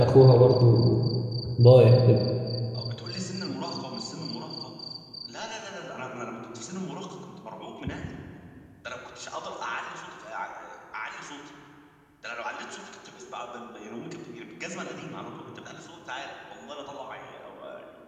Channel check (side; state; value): both; identical; correlation 1.00